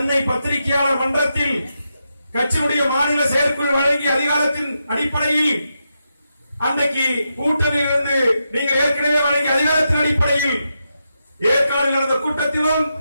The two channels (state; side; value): inverted; both; correlation -0.85